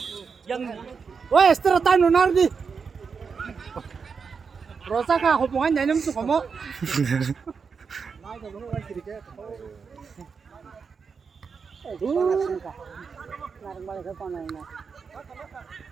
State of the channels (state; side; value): quieter; left; 5.6 dB